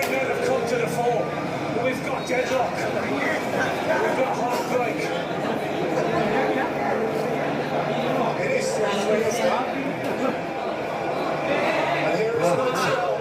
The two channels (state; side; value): identical; both; correlation 1.00